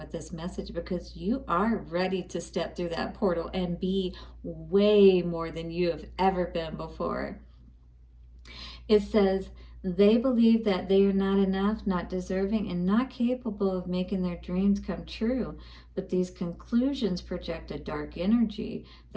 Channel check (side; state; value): both; identical; correlation 1.00